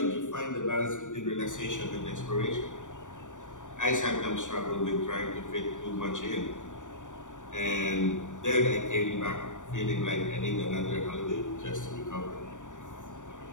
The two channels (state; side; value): late; right; 0.86 ms